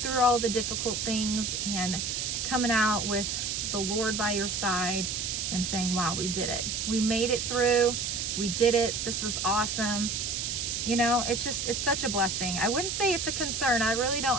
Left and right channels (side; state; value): right; noise; hiss, 2 dB below the sound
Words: all the difficult things, and coming out with the Lord by your side and saying, wow, we did it. We made it through. We did it. This was awesome. You know, it's such a blessing. I wouldn't say it's a concern. I really